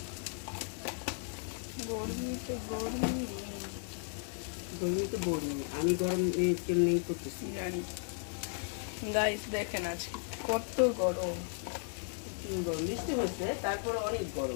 গরমিতে গরমি, আমি গরম কেমনি করতেছি জানি। গাইস দেখেন আজকে কত গরম, গরম বৃষ্টি হচ্ছে, তারপরে অনেক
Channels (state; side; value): silent; right; 54 dB below the other